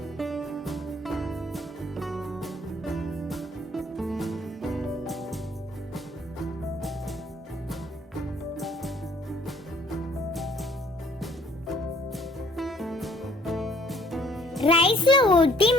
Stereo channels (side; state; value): both; normal; correlation 0.60